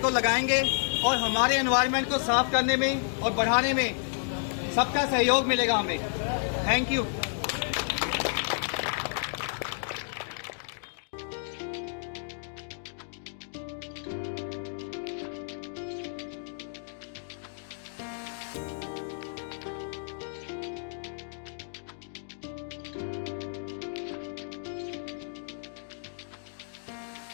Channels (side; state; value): right; silent; digital silence